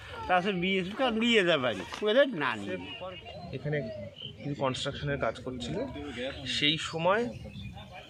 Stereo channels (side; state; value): both; identical; correlation 1.00